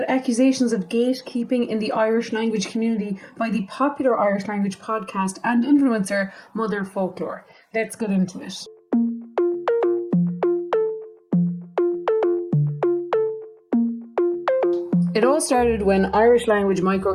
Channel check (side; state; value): both; identical; correlation 1.00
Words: accusations of gatekeeping in the Irish language community by the popular Irish language podcast and influencer Motherfoclóir. Let's get into it. It all started when Irish language